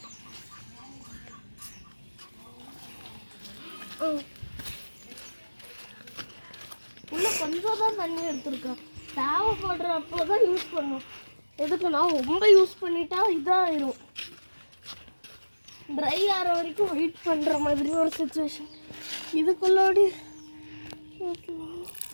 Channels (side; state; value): both; inverted; correlation -1.00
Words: உள்ள கொஞ்சம் தான் தண்ணி எடுத்துருக்கேன். தேவைப்படுறப்போ தான் யூஸ் பண்ணும். எதுக்குன்னா ரொம்ப யூஸ் பண்ணிட்டா இதாகிடும். ட்ரை ஆகிற வரைக்கும் வெயிட் பண்ணுற மாதிரி ஒரு சுச்சுவேஷன். இதுக்குள்ளாடி